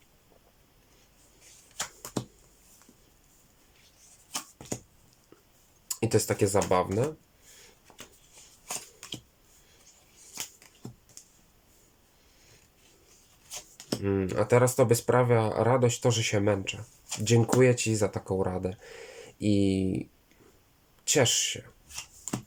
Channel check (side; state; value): both; identical; correlation 1.00